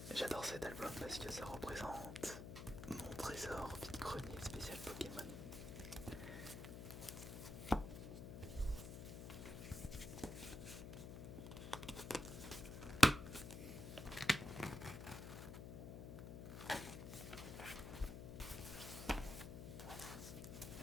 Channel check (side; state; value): left; noise; hum, 8 dB below the sound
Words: J'adore cet album parce que ça représente mon trésor vide-grenier spécial Pokémon.